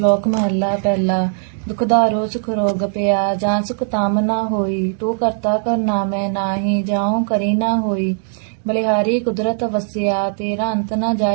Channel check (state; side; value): silent; left; digital silence